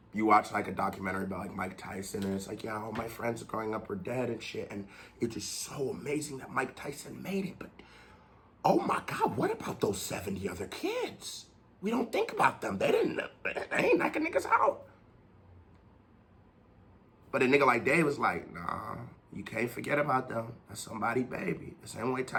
a documentary about like Mike Tyson, and it's like, yeah, all my friends growing up are dead and shit, and it's just so amazing that Mike Tyson made it. But oh my God, what about those 70 other kids? We don't think about them. They ain't knocking niggas out. But a nigga like Dave was like, nah, you can't forget about them. That's somebody baby. The same way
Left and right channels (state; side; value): identical; both; correlation 1.00